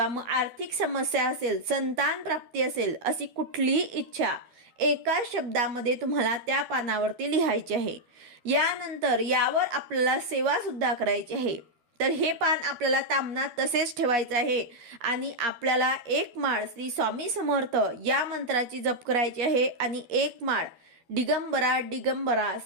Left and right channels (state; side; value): late; left; 12 ms